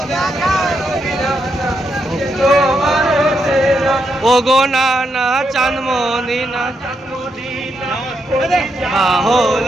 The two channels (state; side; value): normal; both; correlation 0.81